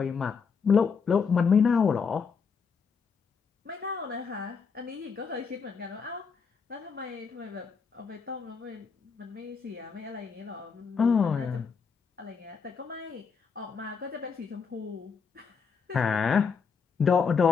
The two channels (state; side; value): quieter; right; 5.7 dB